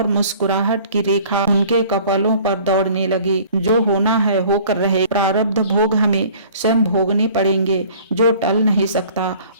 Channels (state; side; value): inverted; both; correlation -0.51